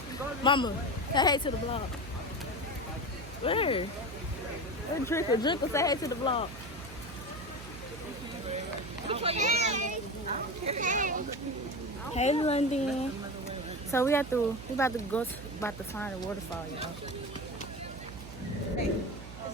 Mama, say hey to the vlog. Where? Hey, Drinker, say hey to the vlog. Hey, London. So we about to find a waterfall, y'all.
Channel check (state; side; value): noise; right; hum, 14 dB below the sound